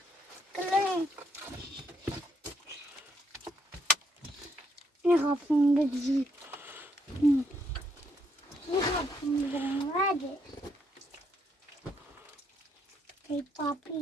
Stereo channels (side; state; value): both; normal; correlation 0.74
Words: clean. Jag har funnit det. Jag har funnit det. Hey,